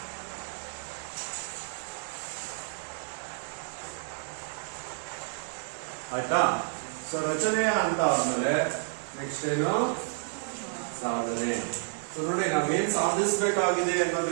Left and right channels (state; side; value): silent; left; 57 dB below the other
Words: ಆಯ್ತಾ? ಸೊ ರಚನೆಯ ಅಂತ ಆದ್ಮೇಲೆ ನೆಕ್ಸ್ಟ್ ಏನು? ಸಾಧನೆ. ಸೊ ನೋಡಿ, ನಾವೇನ್ ಸಾಧಿಸಬೇಕಾಗಿದೆ